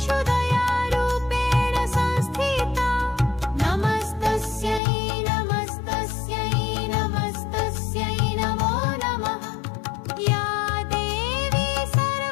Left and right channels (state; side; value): drops out; right; at 4.8 s